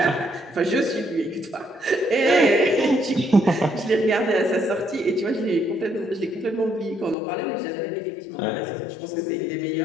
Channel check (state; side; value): drops out; right; at 7.2 s